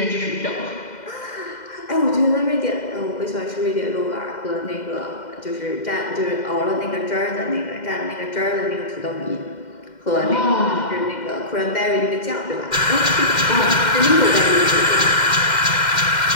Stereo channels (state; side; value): late; right; 2.1 ms